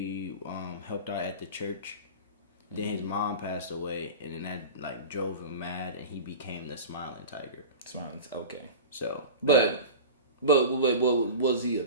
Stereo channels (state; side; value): inverted; both; correlation -0.33